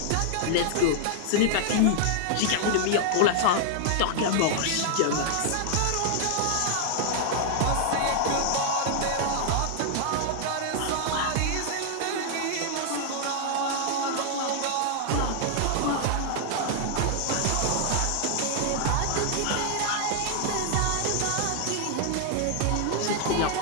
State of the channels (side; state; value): both; different; correlation -0.01